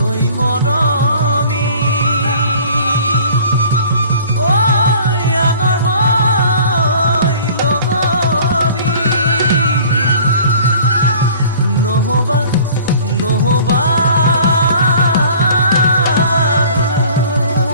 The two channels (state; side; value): inverted; both; correlation -0.48